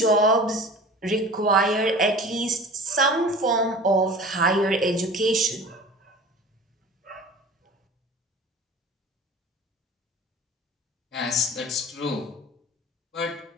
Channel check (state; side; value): normal; both; correlation 0.40